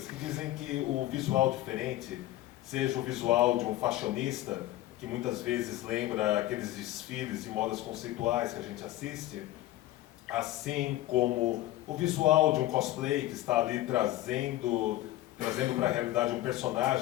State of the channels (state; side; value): quieter; right; 15.5 dB